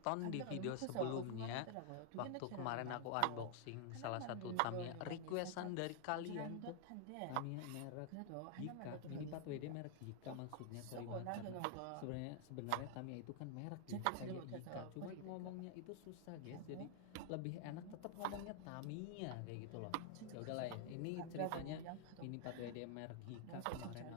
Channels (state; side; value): different; both; correlation 0.00